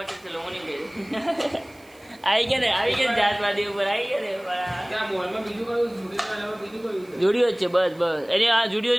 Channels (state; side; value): noise; right; hiss, 29 dB below the sound